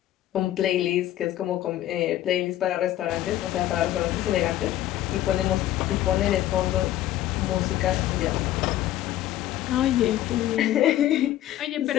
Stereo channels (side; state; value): right; quieter; 13.4 dB